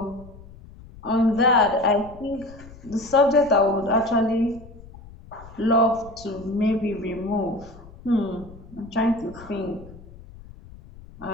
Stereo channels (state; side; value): noise; left; rumble, 19 dB below the sound